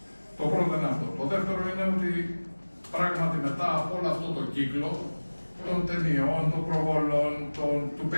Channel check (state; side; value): inverted; both; correlation -1.00